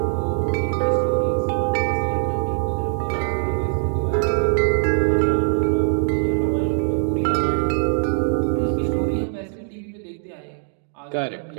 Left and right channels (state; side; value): silent; left; digital silence